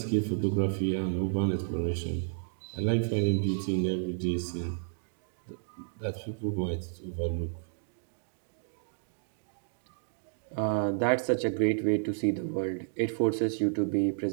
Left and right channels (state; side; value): silent; left; digital silence